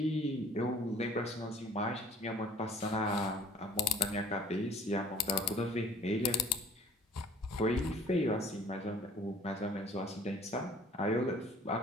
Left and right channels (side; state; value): both; normal; correlation 0.51